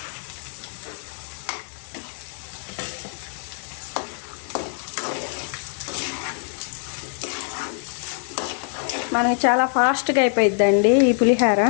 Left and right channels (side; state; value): right; silent; digital silence